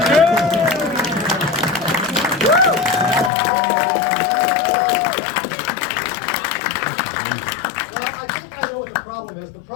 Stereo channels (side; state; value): right; drops out; at 3.3 s